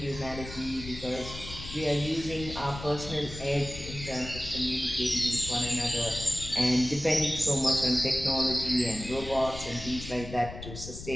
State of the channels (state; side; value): noise; left; rumble, 11 dB below the sound